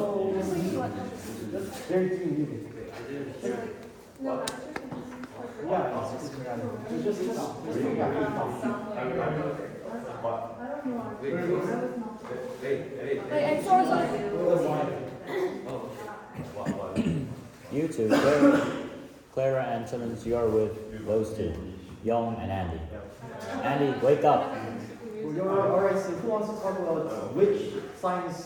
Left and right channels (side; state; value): both; identical; correlation 1.00